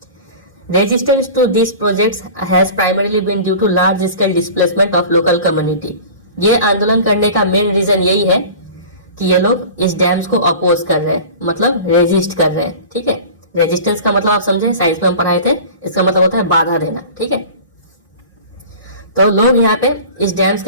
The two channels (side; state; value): both; inverted; correlation -0.38